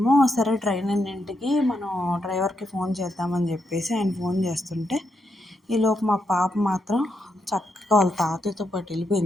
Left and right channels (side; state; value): both; normal; correlation 0.81